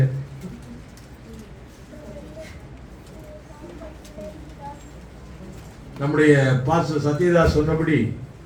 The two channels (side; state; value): both; identical; correlation 1.00